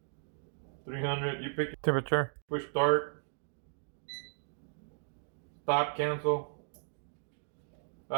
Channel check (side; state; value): left; silent; digital silence